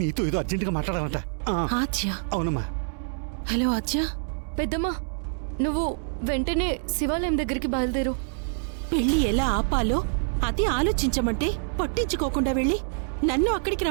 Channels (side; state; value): left; silent; 61 dB below the other